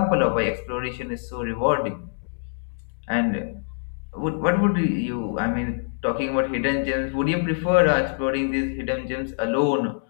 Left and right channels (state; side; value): silent; right; digital silence